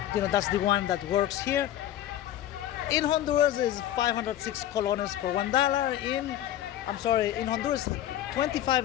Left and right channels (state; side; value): quieter; right; 12.4 dB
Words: the one that works here. In Honduras is 506 colones for $1. In Honduras, 25